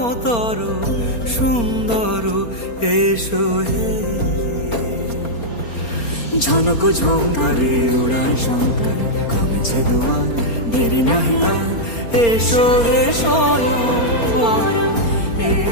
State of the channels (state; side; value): late; right; 4.3 ms